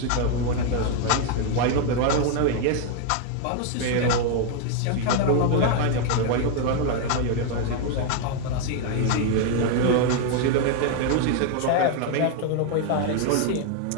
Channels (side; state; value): both; different; correlation 0.00